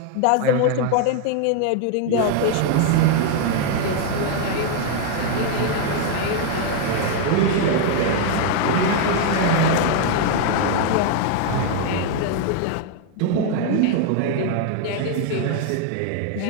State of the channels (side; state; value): both; different; correlation 0.00